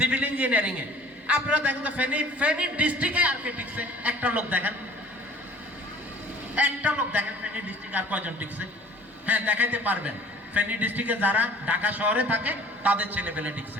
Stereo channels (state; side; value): normal; both; correlation 0.49